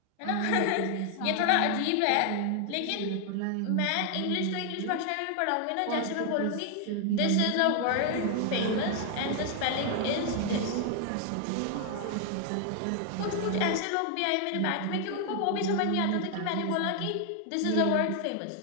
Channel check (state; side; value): different; both; correlation 0.00